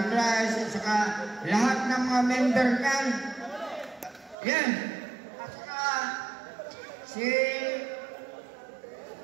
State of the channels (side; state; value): left; drops out; at 4.4 s